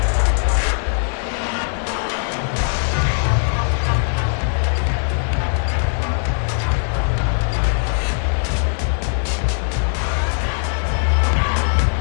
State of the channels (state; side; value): silent; right; 66 dB below the other